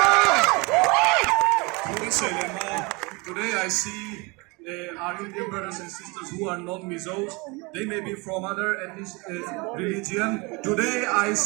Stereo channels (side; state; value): left; quieter; 27.5 dB